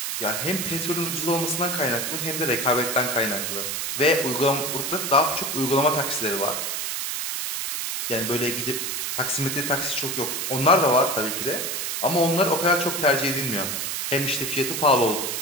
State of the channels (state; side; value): noise; right; hiss, 2 dB below the sound